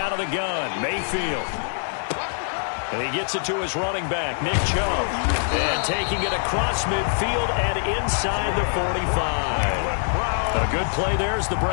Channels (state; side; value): silent; right; 63 dB below the other